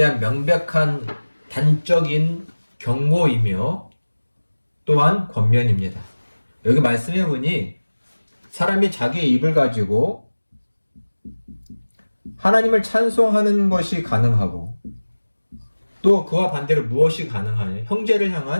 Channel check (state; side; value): inverted; both; correlation -1.00